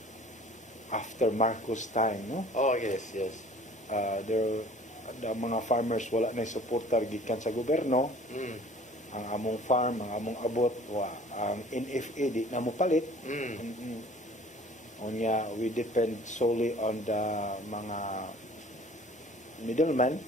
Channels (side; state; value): both; normal; correlation 0.49